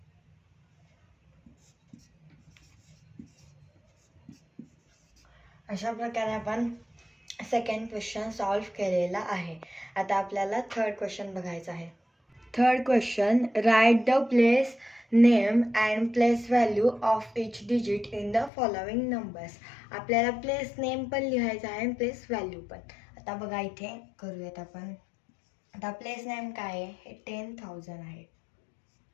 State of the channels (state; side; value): drops out; right; at 18.5 s